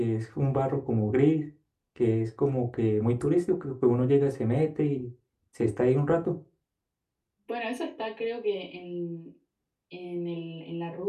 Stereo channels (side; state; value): both; identical; correlation 1.00